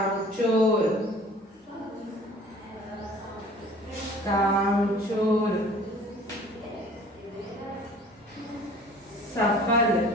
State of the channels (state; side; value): normal; both; correlation 0.49